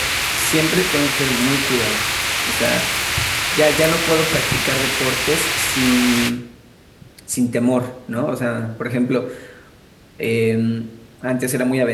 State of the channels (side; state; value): both; identical; correlation 1.00